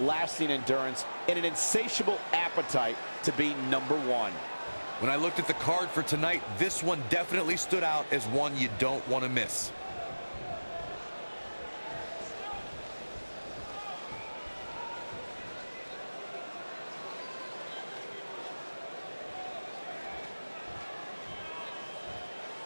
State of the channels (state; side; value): inverted; both; correlation -1.00